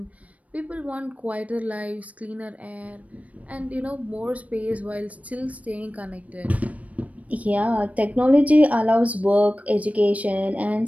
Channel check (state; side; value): late; left; 0.067 ms